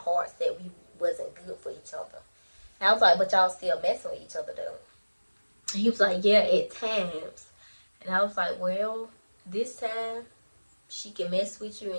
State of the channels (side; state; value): both; inverted; correlation -1.00